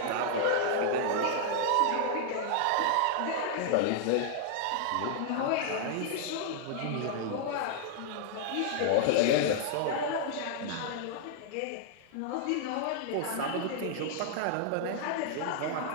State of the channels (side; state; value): both; different; correlation -0.01